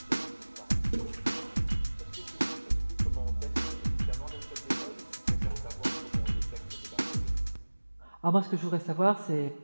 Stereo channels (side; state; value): both; inverted; correlation -1.00